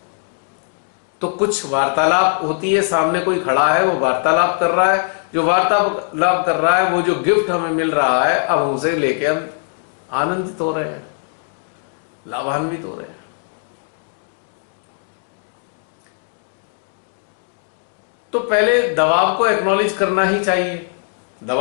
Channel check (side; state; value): right; silent; 66 dB below the other